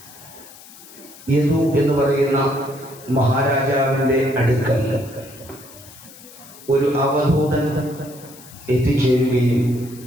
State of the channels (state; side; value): noise; left; hiss, 20 dB below the sound